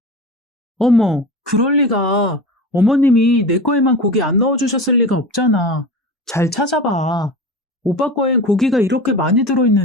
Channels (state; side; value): normal; both; correlation 0.30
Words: 어머, 그럴 리가. 어머님이 내 거에만 고기 안 넣어주셨을 리가 없잖아. 잘 찾아봐. 오빠 거엔 고기가 이렇게 많이